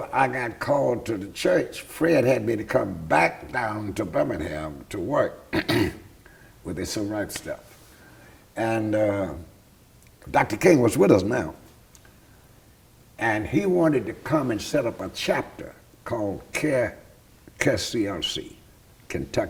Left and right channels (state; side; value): identical; both; correlation 1.00